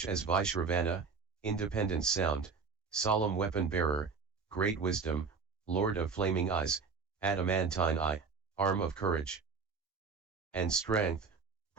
as Vaishravana, independent sound, solemn weapon bearer, great wisdom, lord of flaming eyes, adamantine eye, arm of courage and strength,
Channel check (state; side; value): quieter; left; 5.1 dB